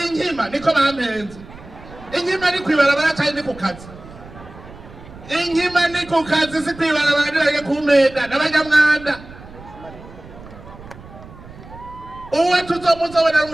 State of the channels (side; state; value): right; noise; rumble, 18 dB below the sound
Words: inkima niko bampenze. Inkima ni kwibarabara cyane ni ku kazi. Inkima ni ku kazi si kwibarabara nirage kumenda n'abanyamwanda. Uwe tuzomuzobona